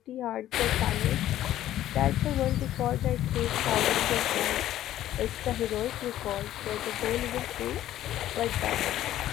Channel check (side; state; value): right; quieter; 12.9 dB